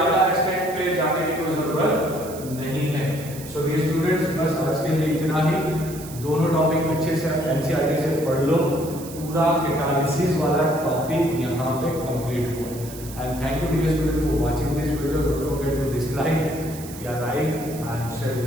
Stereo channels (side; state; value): right; noise; hiss, 15 dB below the sound